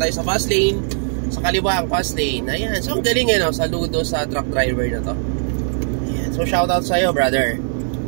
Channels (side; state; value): left; silent; 58 dB below the other